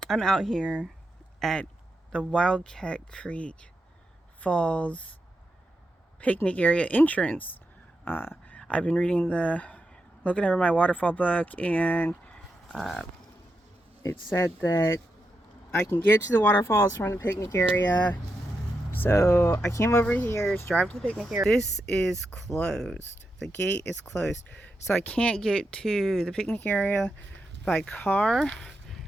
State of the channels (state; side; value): normal; both; correlation 0.86